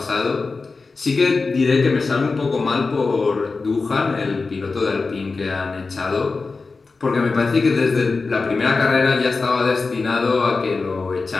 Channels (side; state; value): right; quieter; 4.1 dB